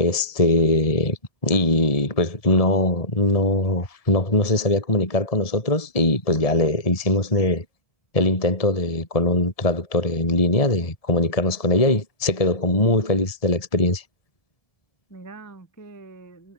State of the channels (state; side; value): late; right; 1.7 ms